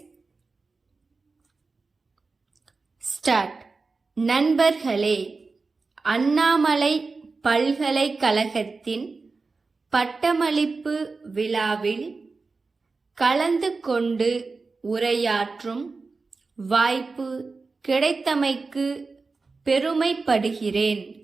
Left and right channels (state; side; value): quieter; left; 4.1 dB